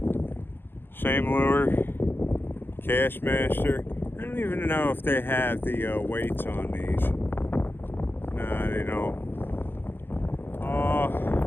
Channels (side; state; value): right; late; 0.10 ms